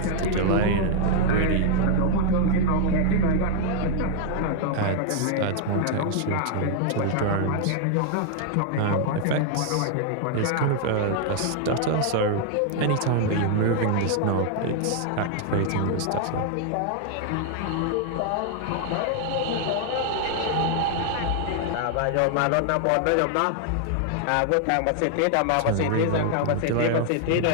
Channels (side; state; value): both; different; correlation 0.00